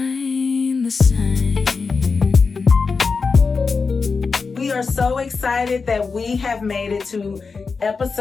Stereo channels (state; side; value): quieter; right; 4.8 dB